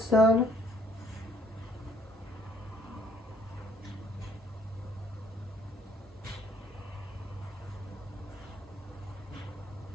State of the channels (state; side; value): normal; both; correlation 0.62